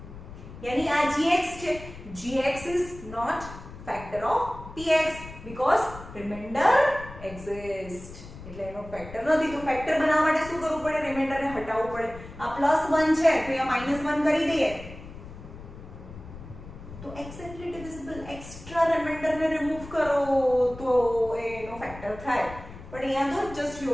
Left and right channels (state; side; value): noise; left; rumble, 15 dB below the sound